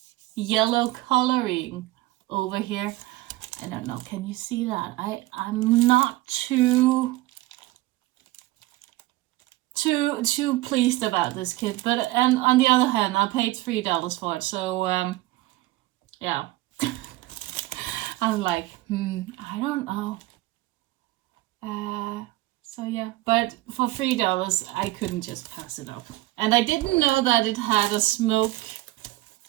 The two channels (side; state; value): left; quieter; 18.4 dB